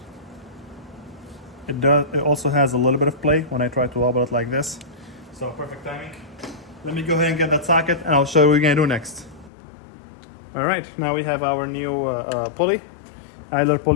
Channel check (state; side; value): drops out; right; at 9.5 s